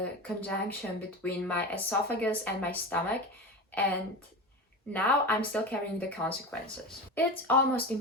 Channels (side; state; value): both; normal; correlation 0.25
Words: conjunction between my esophagus and my stomach, and now I'm still carrying the consequences. It's almost